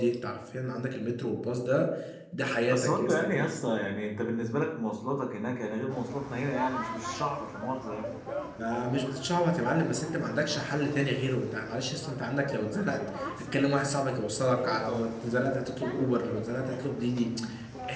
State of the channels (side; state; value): both; identical; correlation 1.00